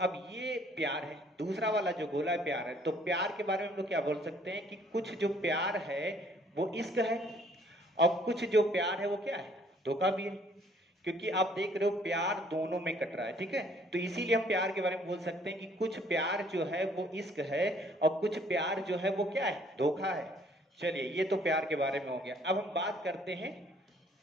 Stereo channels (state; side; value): normal; both; correlation 0.61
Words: अब ये प्यार है, दूसरा वाला जो गोला है प्यार है। तो प्यार के बारे में हम लोग क्या बोल सकते हैं कि कुछ जो प्यार है वो इश्क है और कुछ जो प्यार है वो क्या है? धोखा भी है, क्योंकि आप देख रहे हो प्यार दोनों में कट रहा है, ठीक है। तो इसीलिए हम प्यार के बारे में बोल सकते हैं कि कुछ प्यार जो है वो इश्क है और कुछ प्यार जो है वो क्या है? धोखा है। चलिए ये तो प्यार के बारे में हो गया। अब हम बात करते हैं